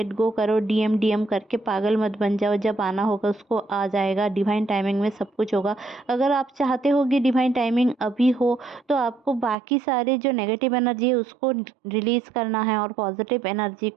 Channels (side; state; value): left; drops out; at 9.6 s